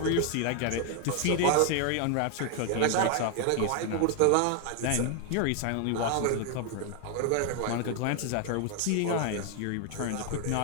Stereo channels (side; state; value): both; different; correlation 0.00